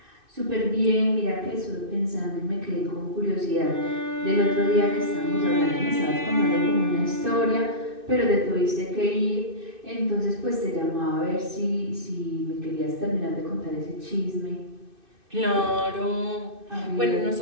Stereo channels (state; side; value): late; left; 2.6 ms